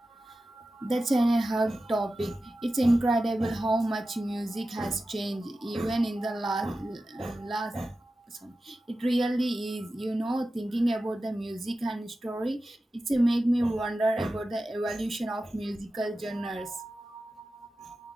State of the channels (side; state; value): both; normal; correlation 0.94